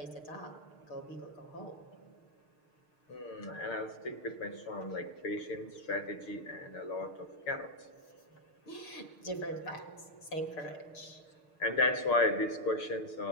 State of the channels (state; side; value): late; right; 6.6 ms